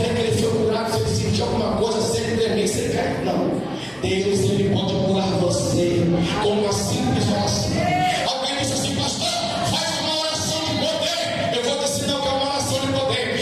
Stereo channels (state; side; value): identical; both; correlation 1.00